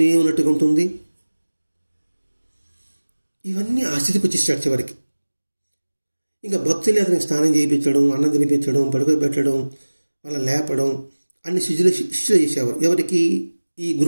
ఉన్నట్టుగా ఉంటుంది. ఇవన్నీ ఆ స్థితికి వచ్చేసాడు చివరికి. ఇంకా భక్తులు అతనికి స్నానం చేయించడం, అన్నం తినిపించడం, పడుకోబెట్టడం, వాళ్ళ లేపడం అన్ని శిష్యులు చేసేవారు. ఎవరికి? ఈ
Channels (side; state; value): both; inverted; correlation -1.00